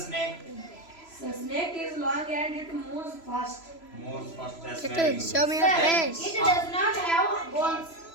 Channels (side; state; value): right; late; 3.0 ms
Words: The snake is long and it moves fast. Moves fast. That's It very is. good. Show me your Sir, face. it does not have bones.